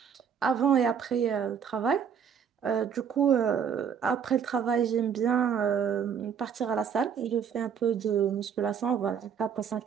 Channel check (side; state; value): left; quieter; 7.5 dB